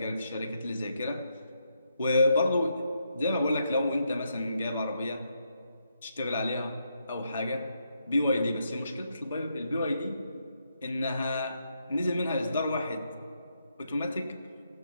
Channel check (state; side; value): inverted; both; correlation -0.80